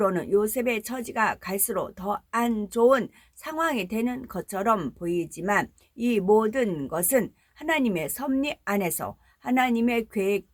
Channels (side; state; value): both; identical; correlation 1.00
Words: 요셉의 처지가 갈수록 더 안 좋은 상황이 되는 것처럼 보이지만 이 모든 것은 하나님의 섭리 안에서 하나님의